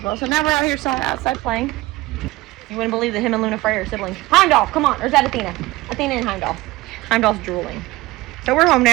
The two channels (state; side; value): quieter; left; 19.1 dB